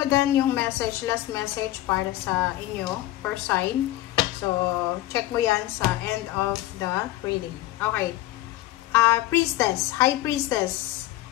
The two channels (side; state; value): right; quieter; 15.9 dB